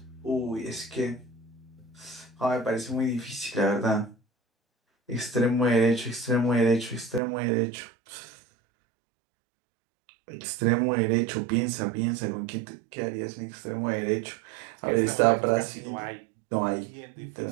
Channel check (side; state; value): left; drops out; at 7.2 s